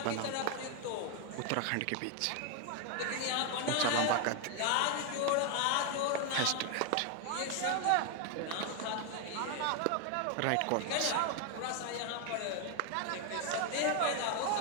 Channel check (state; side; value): different; both; correlation 0.01